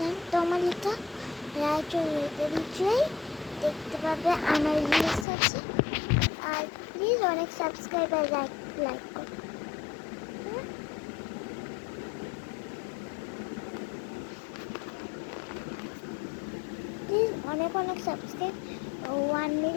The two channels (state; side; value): drops out; right; at 5.2 s